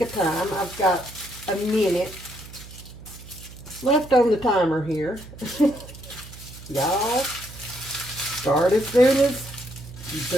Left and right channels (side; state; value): right; noise; hum, 15 dB below the sound